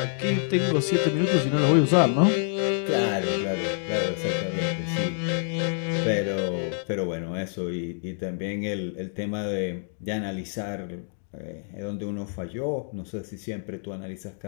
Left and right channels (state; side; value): silent; right; digital silence